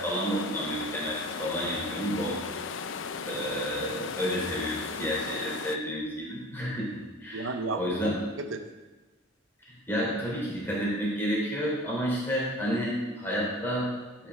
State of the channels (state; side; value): normal; both; correlation 0.40